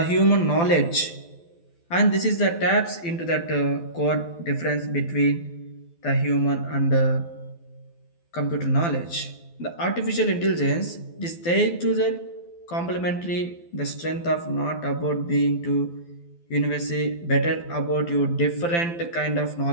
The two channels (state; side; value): late; right; 12 ms